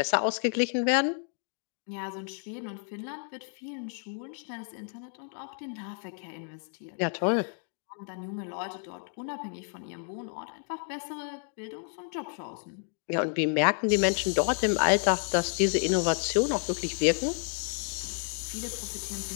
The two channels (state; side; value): silent; right; 57 dB below the other